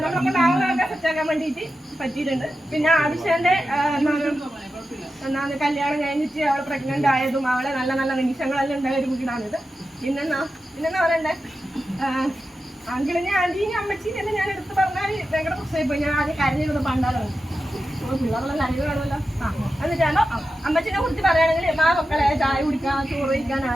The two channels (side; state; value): both; normal; correlation 0.91